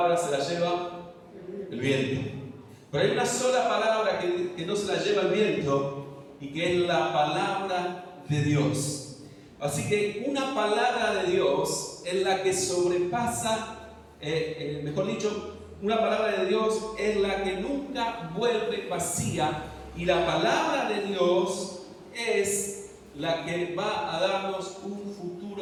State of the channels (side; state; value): both; identical; correlation 1.00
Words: se las lleva el viento. Pero hay una sola palabra que no se la lleva el viento y que es la palabra de Dios. Así que una palabra de Dios es la que sobrepasa, mejor dicho, una palabra de Dios es la que nunca vuelve vacía, y la palabra de Dios es la que va a darnos un